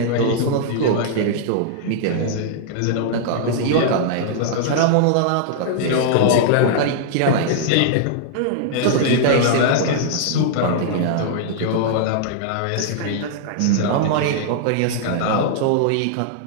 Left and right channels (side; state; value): both; different; correlation -0.01